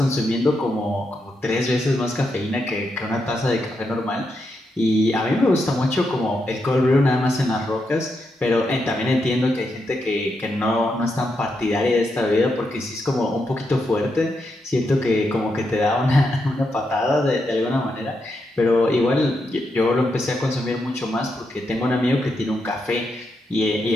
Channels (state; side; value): normal; both; correlation 0.83